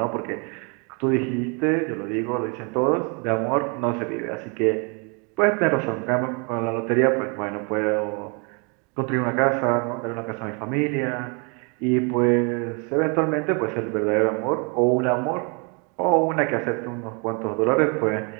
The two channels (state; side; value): quieter; left; 34.4 dB